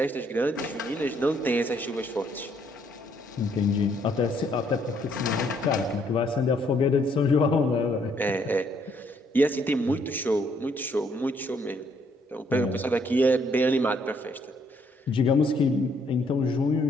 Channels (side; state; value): both; normal; correlation 0.69